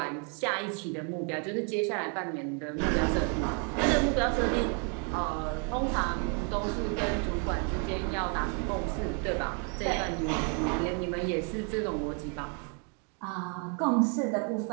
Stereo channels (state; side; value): quieter; left; 38.7 dB